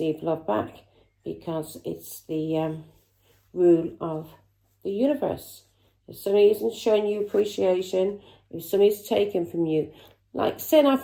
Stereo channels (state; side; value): identical; both; correlation 1.00